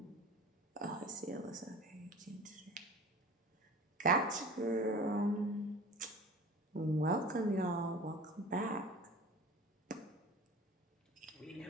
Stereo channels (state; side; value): normal; both; correlation 0.40